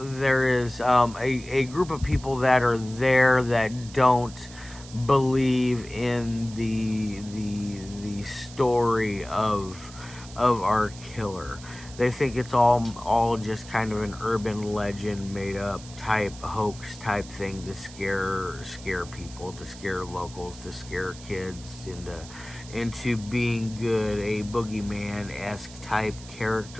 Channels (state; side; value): noise; right; hiss, 17 dB below the sound